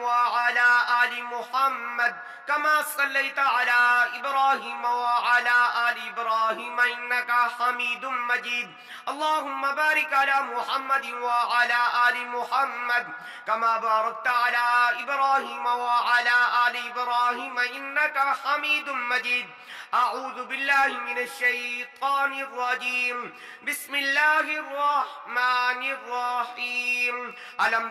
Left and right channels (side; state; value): both; identical; correlation 1.00